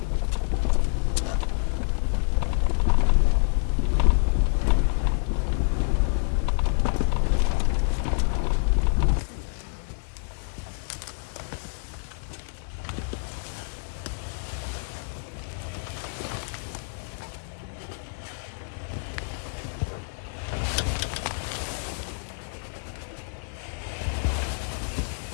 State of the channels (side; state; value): right; silent; digital silence